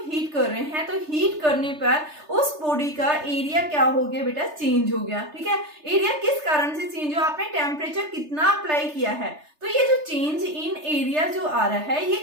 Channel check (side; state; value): left; late; 3.3 ms